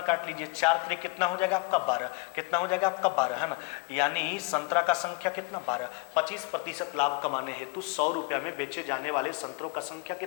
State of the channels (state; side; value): quieter; right; 28.0 dB